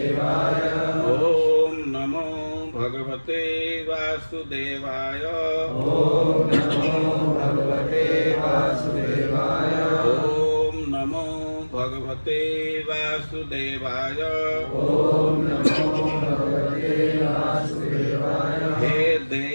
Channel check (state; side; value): inverted; both; correlation -1.00